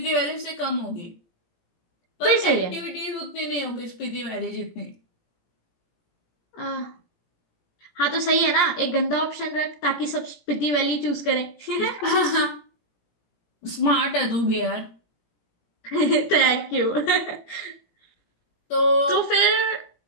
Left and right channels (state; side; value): late; right; 17 ms